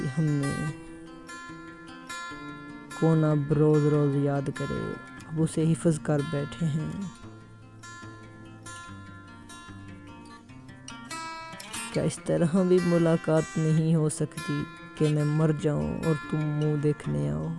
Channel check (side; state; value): both; identical; correlation 1.00